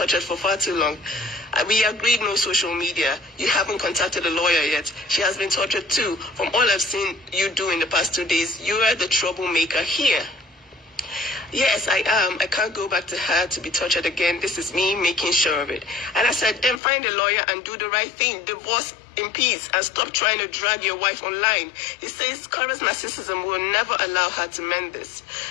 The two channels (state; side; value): drops out; right; at 16.8 s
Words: for far too long. We agreed no social media. You haven't contacted a lawyer yet. She has been tortured too. From all I've seen you do in the past 2 days, you are the troublemaker here. Yes, I am. I can't go back to her to be tortured again. This is me making sure of it. And I said, then find a lawyer and do the right thing. Divorce in peace and stop trying to drag your wife online. He says Korra's narcissism will never allow her to mend this.